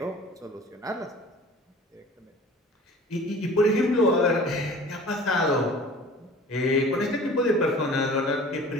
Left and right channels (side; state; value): both; normal; correlation 0.44